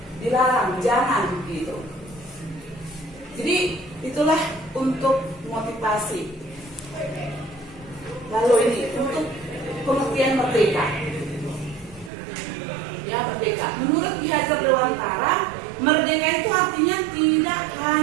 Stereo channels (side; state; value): left; drops out; at 12.1 s